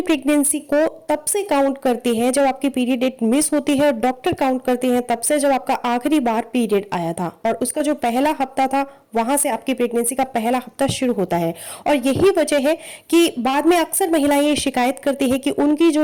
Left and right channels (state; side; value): identical; both; correlation 1.00